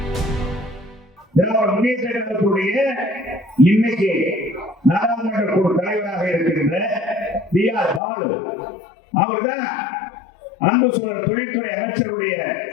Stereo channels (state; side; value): drops out; right; at 8.0 s